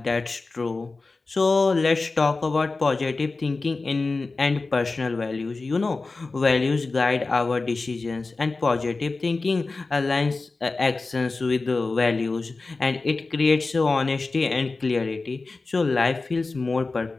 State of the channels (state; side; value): quieter; right; 3.7 dB